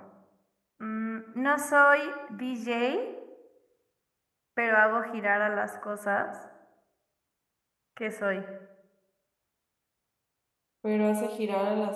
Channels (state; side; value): identical; both; correlation 1.00